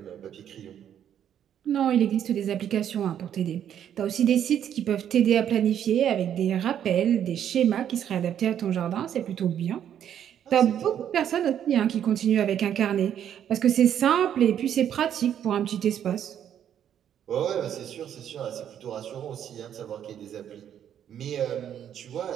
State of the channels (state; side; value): quieter; left; 9.7 dB